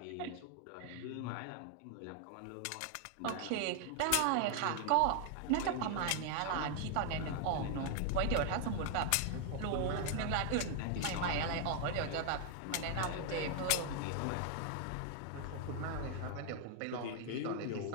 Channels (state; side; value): different; both; correlation 0.00